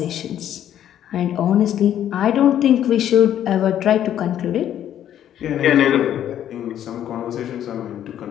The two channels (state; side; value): quieter; right; 10.8 dB